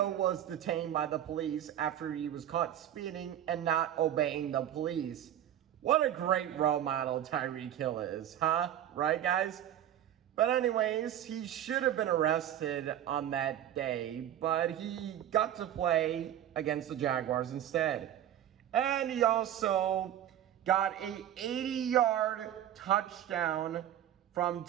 was detained by the police after he was caught speeding and not obeying the police. What a great role model Tyreek Hill is, huh? Right, guys? But anyways, he should have been arrested on that day, but he got to play against the Jaguars instead. And he also got a 80-yard touchdown from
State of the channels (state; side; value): quieter; left; 11.2 dB